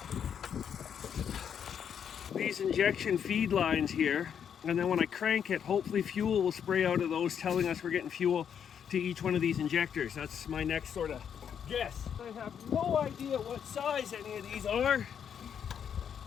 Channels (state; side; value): quieter; right; 8.1 dB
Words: these injection feed lines here, and then when I crank it, hopefully fuel will spray out of those, telling us we're getting fuel to each one of these injectors. That's my next sort of guess. I have no idea what size any of these are.